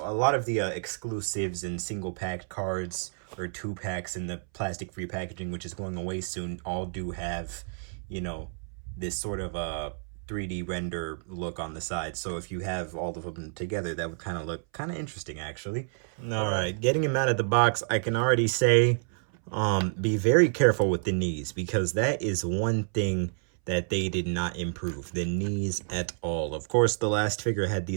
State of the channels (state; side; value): silent; left; 58 dB below the other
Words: a lot of the exclusives and single packed cards or 2 packs in the plastic free packaging, which is going away soon, all do have, you know, this sort of a 3D render look on the side. So if you have all of them together, that would kind of look kind of interesting, actually. All right, getting him out of the box, I can already say, be very careful with the knees, because that is one thing that they did not improve, the knees at all. Of course, the last figure had